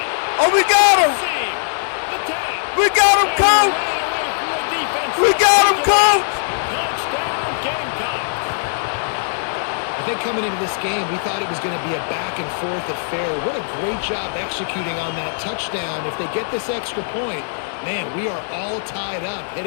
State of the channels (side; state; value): right; silent; digital silence